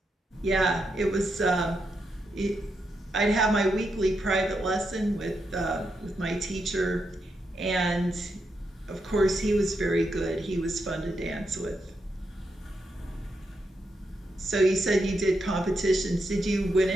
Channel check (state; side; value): normal; both; correlation 0.83